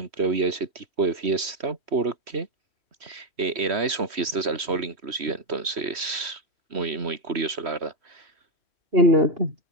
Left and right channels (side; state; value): left; late; 3.1 ms